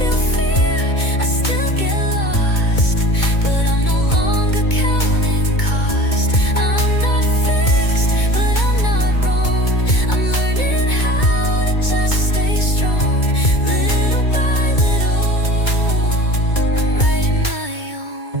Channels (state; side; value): late; right; 2.2 ms